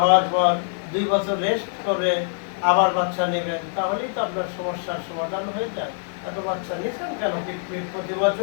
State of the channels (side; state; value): right; silent; digital silence